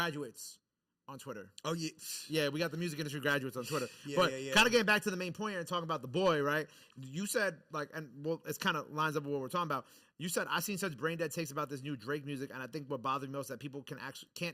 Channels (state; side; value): identical; both; correlation 1.00